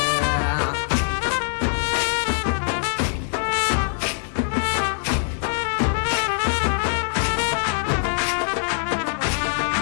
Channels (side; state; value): right; silent; 64 dB below the other